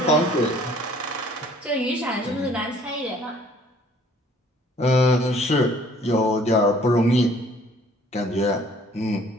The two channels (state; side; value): normal; both; correlation 0.56